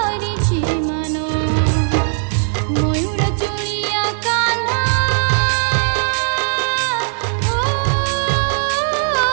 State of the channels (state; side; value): silent; left; digital silence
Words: मान मयूर चुड़िया कान्हा